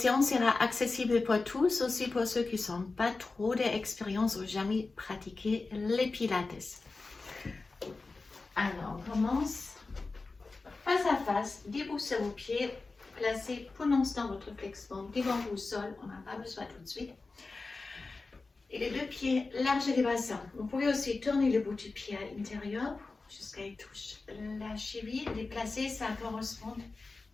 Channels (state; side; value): quieter; right; 3.8 dB